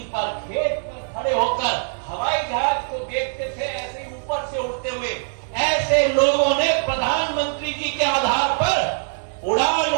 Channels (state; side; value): silent; left; digital silence